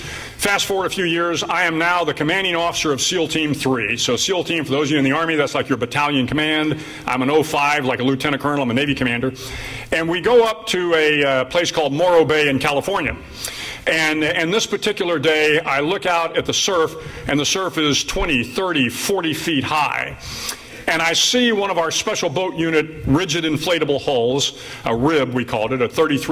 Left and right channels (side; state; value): both; identical; correlation 1.00